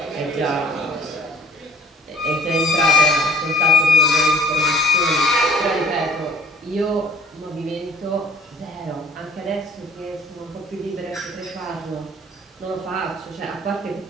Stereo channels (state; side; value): normal; both; correlation 0.53